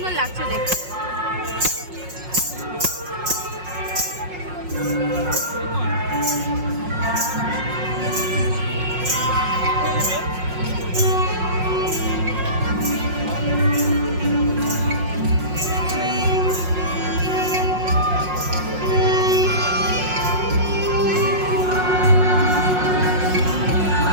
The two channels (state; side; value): late; left; 5.5 ms